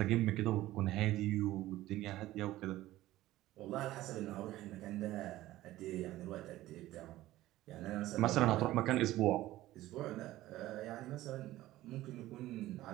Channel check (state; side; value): quieter; left; 15.9 dB